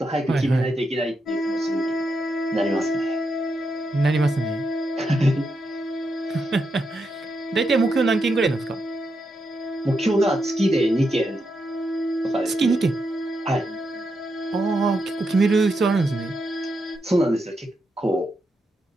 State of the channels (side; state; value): both; normal; correlation 0.84